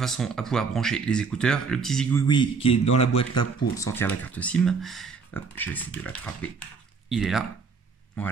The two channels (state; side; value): quieter; left; 5.2 dB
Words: à pouvoir brancher les écouteurs. Le petit zigouigoui qui est dans la boîte là pour sortir la carte SIM. Hop, je vais essayer de l'attraper. Il est là.